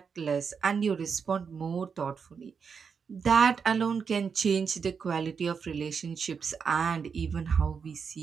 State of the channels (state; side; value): quieter; left; 6.1 dB